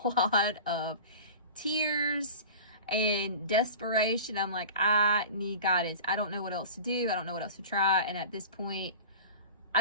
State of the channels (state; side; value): inverted; both; correlation -0.35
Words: lot of tears and desperation, I'm like, I need guidance. I don't know what else to do. I don't know what else to try. And at this point, I